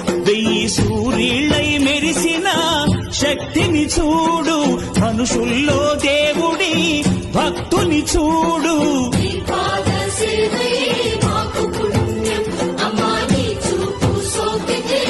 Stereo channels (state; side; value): identical; both; correlation 1.00